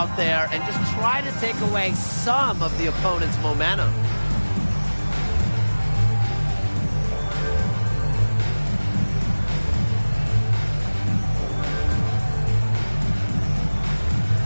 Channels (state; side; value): inverted; both; correlation -1.00